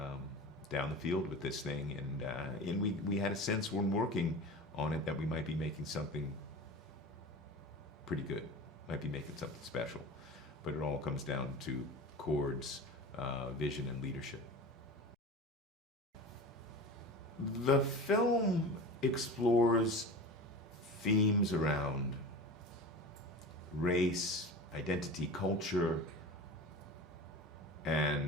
down the field with this thing, and we had a sense when working on it that we might be making something pretty good, might be making something special, but it all comes down to Cord's vision and leadership. The film explores themes around race, identity, culture,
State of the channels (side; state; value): both; normal; correlation 0.33